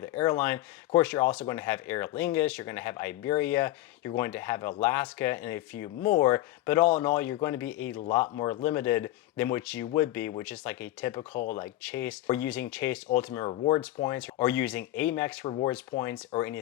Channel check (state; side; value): quieter; right; 15.5 dB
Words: airline. Of course, you're also going to have Aer Lingus, you're going to have Iberia, you're going to have Alaska, and a few more. But all in all, you're going to be a lot more limited than what you would be with just like a typical like Chase, or using Chase Ultimate Rewards points, or using Amex Rewards points, or